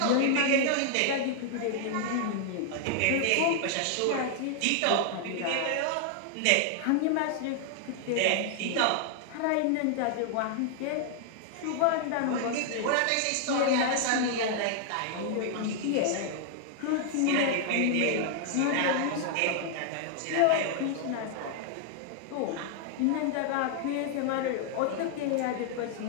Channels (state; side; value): different; both; correlation 0.00